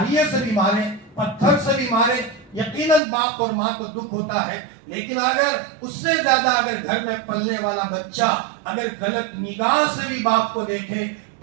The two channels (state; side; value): drops out; left; at 3.0 s